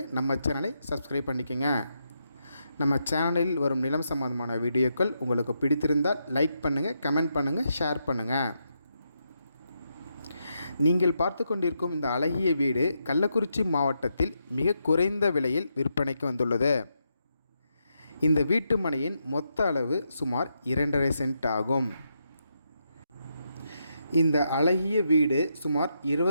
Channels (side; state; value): both; inverted; correlation -0.82